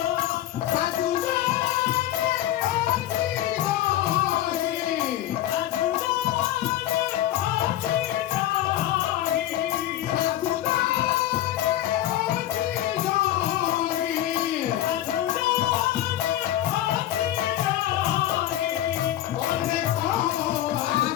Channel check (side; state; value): right; quieter; 13.1 dB